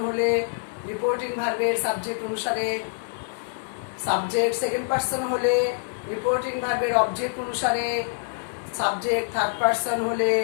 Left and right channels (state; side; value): silent; right; digital silence